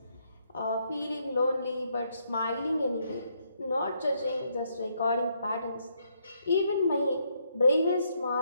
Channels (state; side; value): inverted; both; correlation -0.74